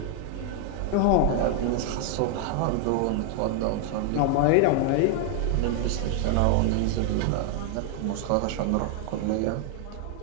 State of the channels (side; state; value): both; different; correlation 0.00